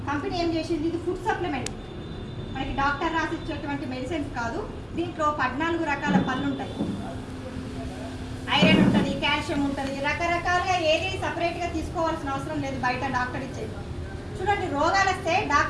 కంపెనీ ఏం చేసింది, ఇది ఫుడ్ సప్లిమెంట్, మనకి డాక్టర్ రాసి ఇచ్చేటువంటి మెడిసిన్స్ కాదు. దీంట్లో 14 రకాల పళ్ళు ఉంటాయి, ఐరన్ ఉంటుంది, కాల్షియం ఉంటుంది, రకరకాలుగా ఏది సపరేట్గా తీసుకోవాల్సిన అవసరం లేదు, బయట డాక్టర్ ఇచ్చేది. చూడండి, రోగాలు వస్తే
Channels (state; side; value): identical; both; correlation 1.00